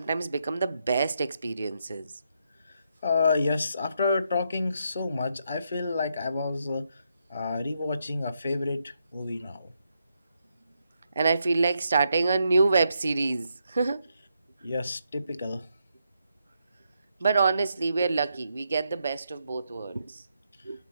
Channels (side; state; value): both; inverted; correlation -0.80